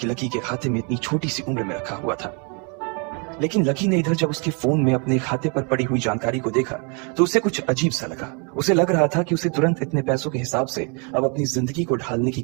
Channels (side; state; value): left; quieter; 34.9 dB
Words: लकी के खाते में इतनी छोटी सी उम्र में रखा हुआ था। लेकिन लकी ने इधर जब उसके फोन में अपने खाते पर पड़ी हुई जानकारी को देखा तो उसे कुछ अजीब सा लगा। उसे लग रहा था कि उसे तुरंत इतने पैसों के हिसाब से अब अपनी जिंदगी को ढालने की